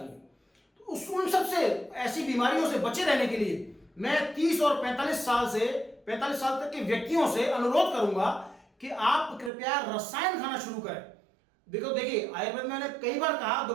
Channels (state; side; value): drops out; left; at 9.5 s